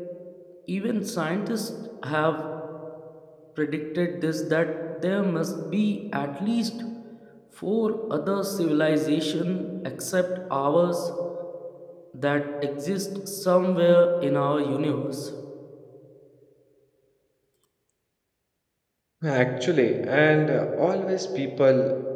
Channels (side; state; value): both; identical; correlation 1.00